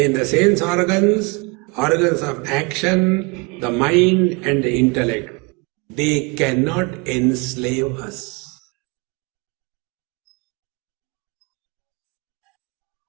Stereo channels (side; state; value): left; quieter; 29.2 dB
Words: the sense organs of action, the mind and the intellect, they cannot enslave us.